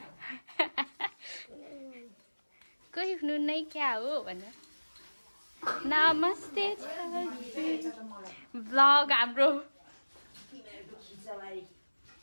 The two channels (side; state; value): both; inverted; correlation -1.00